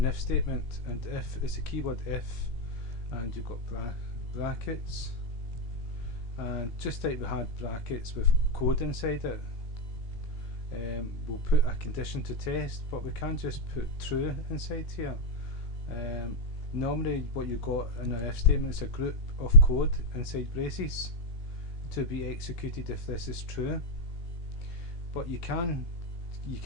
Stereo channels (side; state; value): right; late; 17 ms